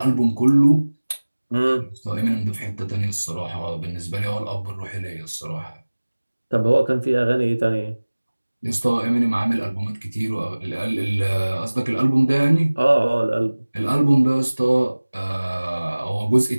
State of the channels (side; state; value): both; inverted; correlation -1.00